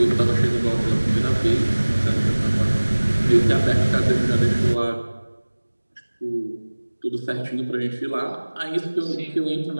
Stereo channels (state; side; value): inverted; both; correlation -1.00